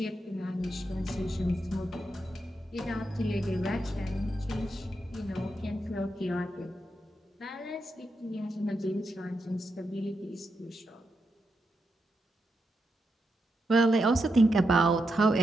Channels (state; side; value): normal; both; correlation 0.85